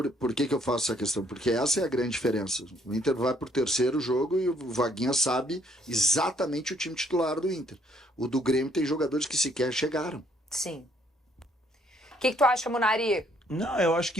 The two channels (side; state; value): both; normal; correlation 0.66